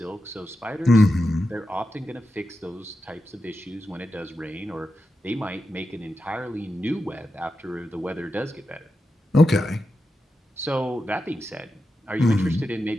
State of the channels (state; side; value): normal; both; correlation 0.89